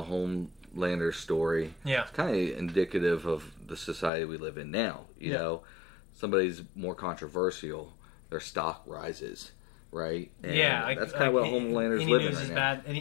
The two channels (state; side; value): drops out; right; at 4.1 s